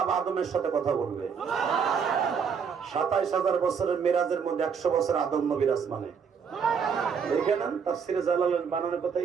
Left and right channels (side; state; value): left; quieter; 6.5 dB